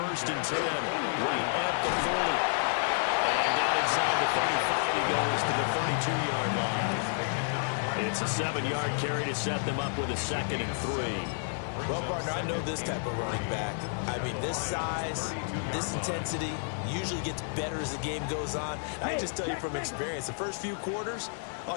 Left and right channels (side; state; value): right; silent; 58 dB below the other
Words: and 10, right at the 40. And down inside the 35, he goes to the 32-yard line. It's a 7-yard carry to set them up with a 2nd and 3. Well, partner, I know this type of running back. I mean, this size, this intensity usually gets better as the game goes on. I just tell you from experience, the first few quarters, oh,